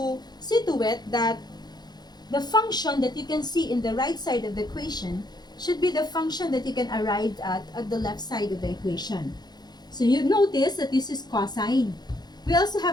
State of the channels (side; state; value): right; late; 0.20 ms